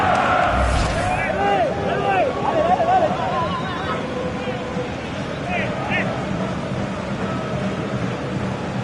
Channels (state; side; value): identical; both; correlation 1.00